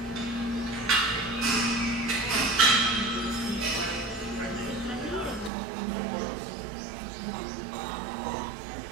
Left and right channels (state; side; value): drops out; left; at 5.5 s